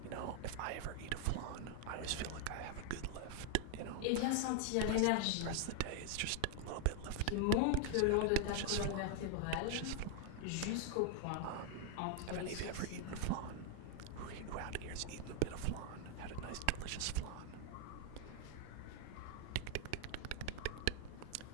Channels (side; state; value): both; different; correlation 0.00